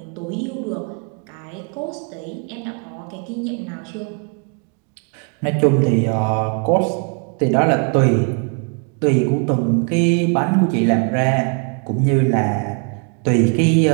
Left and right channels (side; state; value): left; quieter; 39.0 dB